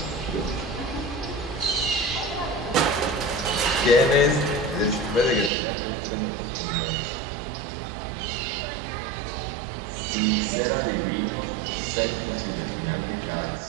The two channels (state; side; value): drops out; left; at 5.5 s